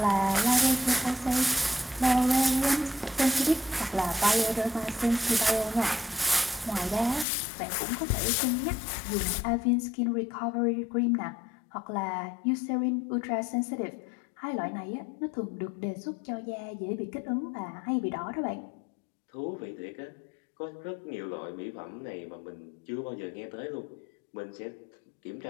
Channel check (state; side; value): drops out; right; at 7.2 s